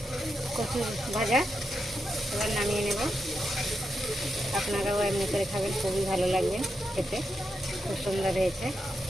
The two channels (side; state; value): both; normal; correlation 0.85